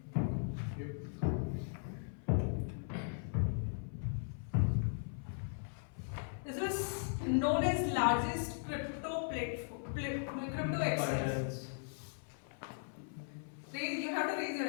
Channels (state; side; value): silent; right; 52 dB below the other